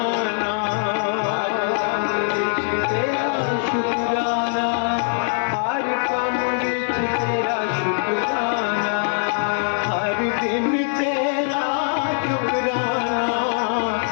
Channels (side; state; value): right; silent; digital silence